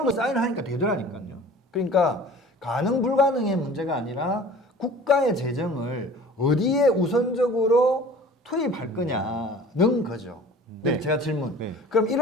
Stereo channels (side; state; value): both; normal; correlation 0.45